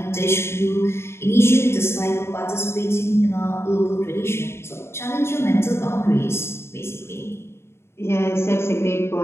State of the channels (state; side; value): late; right; 0.12 ms